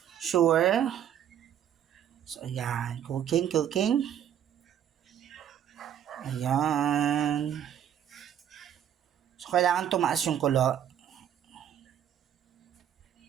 Sure? So, ayan. Cooking. Ayan. So, kailangan tumaas yung kulo.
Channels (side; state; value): left; quieter; 9.9 dB